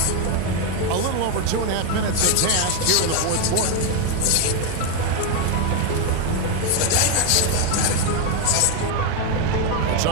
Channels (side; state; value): both; different; correlation 0.02